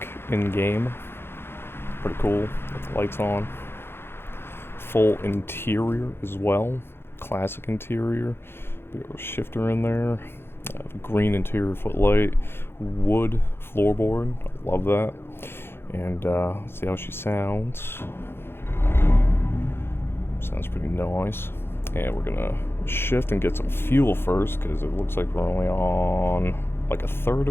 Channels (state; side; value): late; right; 0.11 ms